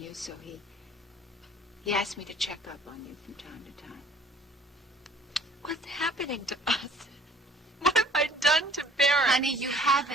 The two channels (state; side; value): normal; both; correlation 0.52